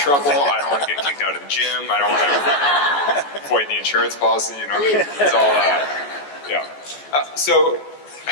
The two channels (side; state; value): right; late; 14 ms